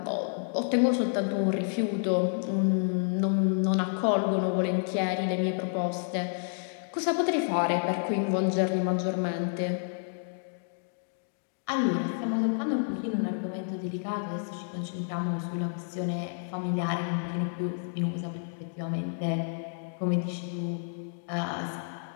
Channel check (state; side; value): silent; right; digital silence